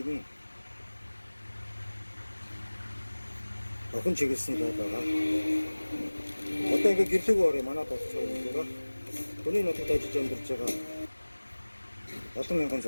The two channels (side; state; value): both; inverted; correlation -1.00